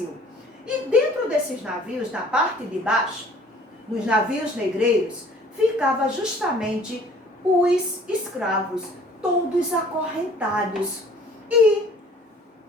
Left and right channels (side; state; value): both; normal; correlation 0.53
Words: E dentro desses navios, na parte de baixo, nos navios negreiros, ficava justamente os escravos, todos acorrentados. E